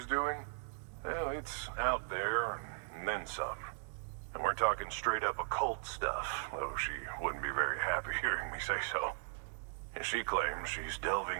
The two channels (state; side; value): silent; left; digital silence